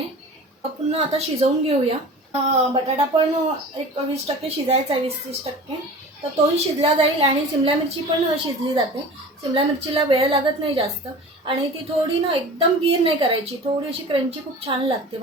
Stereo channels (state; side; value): normal; both; correlation 0.38